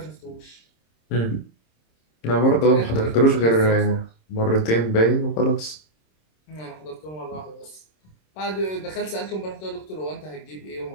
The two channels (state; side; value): late; right; 26 ms